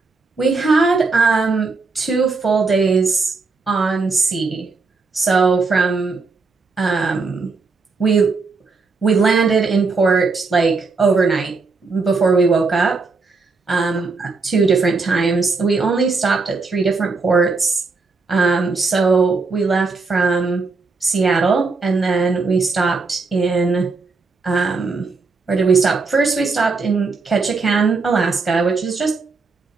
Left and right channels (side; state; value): left; quieter; 4.2 dB